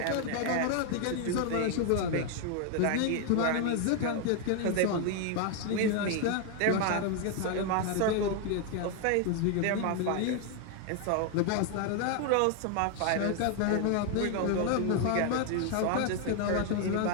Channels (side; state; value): both; different; correlation 0.01